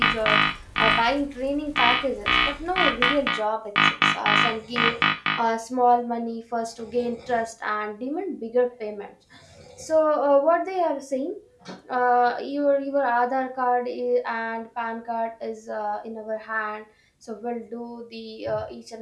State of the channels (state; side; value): identical; both; correlation 1.00